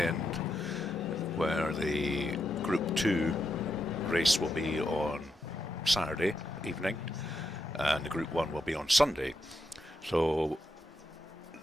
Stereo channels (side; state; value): both; normal; correlation 0.83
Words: where the Group 2 race will be on Saturday evening and the Group 1 will be on Sunday. So